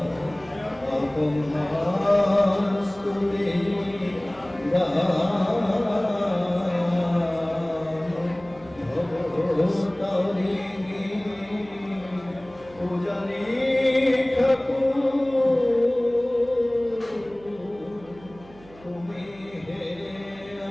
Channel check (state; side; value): noise; right; hum, 23 dB below the sound